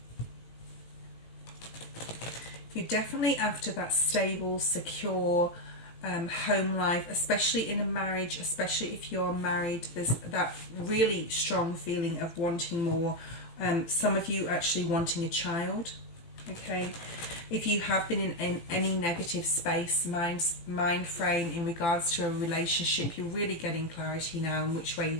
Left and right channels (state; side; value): late; right; 18 ms